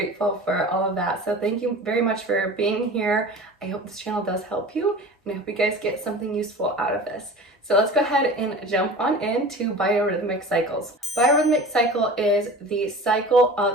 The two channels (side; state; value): both; normal; correlation 0.38